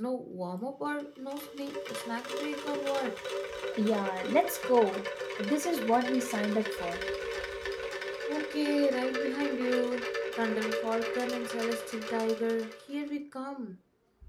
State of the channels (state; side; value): identical; both; correlation 1.00